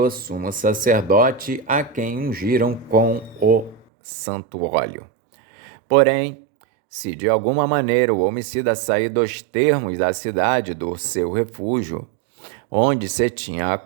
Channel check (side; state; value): left; drops out; at 3.8 s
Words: sumo sacerdote, a quem ungiram com o santo óleo. Porém, se de alguma maneira o homicida sair dos termos da cidade do seu refúgio, onde se tinha